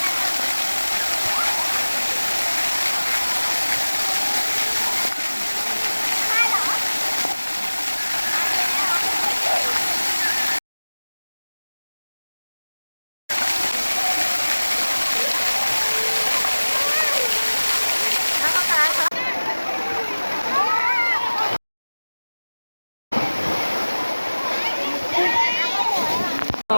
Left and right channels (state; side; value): inverted; both; correlation -1.00